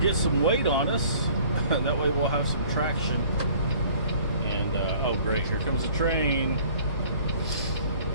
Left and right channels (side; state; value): both; inverted; correlation -0.52